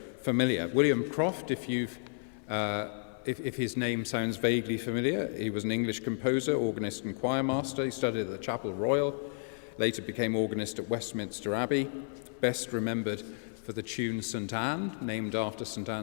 familiar. William Croft, if his name sounds vaguely familiar, he was an English composer, organist and choir master. He studied at the Chapel Royal, later became organist at Westminster Abbey, best remembered for the tune St Anne, named after St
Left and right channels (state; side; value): silent; right; 55 dB below the other